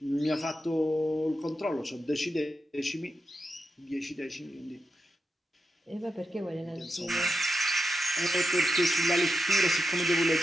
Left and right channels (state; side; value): normal; both; correlation 0.87